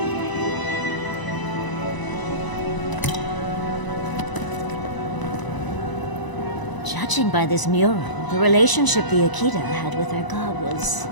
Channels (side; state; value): right; late; 1.0 ms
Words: Judging by this mural, the relationship the Akita had with their god was